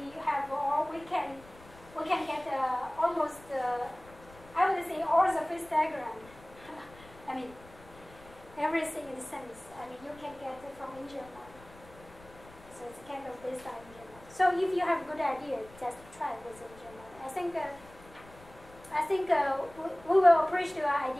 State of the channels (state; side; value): noise; left; rumble, 22 dB below the sound